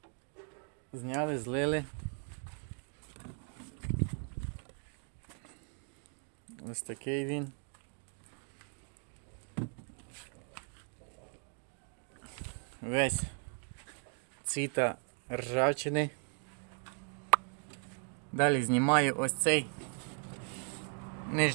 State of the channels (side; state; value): left; quieter; 39.4 dB